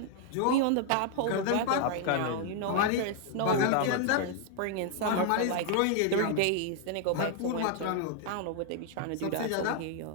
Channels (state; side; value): different; both; correlation 0.00